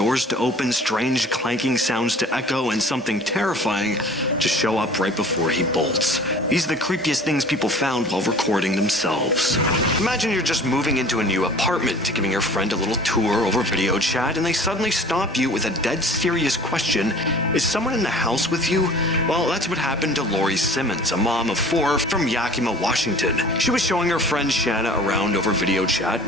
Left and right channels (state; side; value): normal; both; correlation 0.46